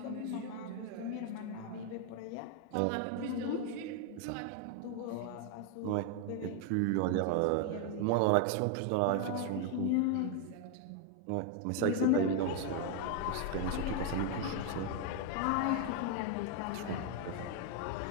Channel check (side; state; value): both; different; correlation 0.00